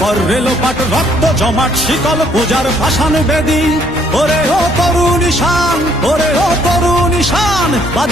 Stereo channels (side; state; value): both; normal; correlation 0.65